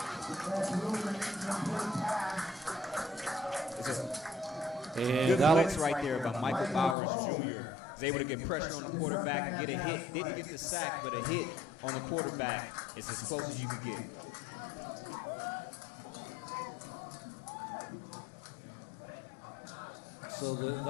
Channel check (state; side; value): drops out; right; at 7.0 s